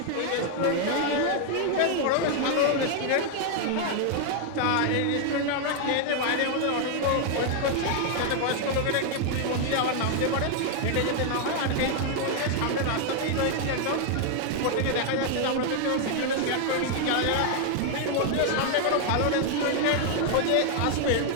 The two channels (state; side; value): different; both; correlation 0.00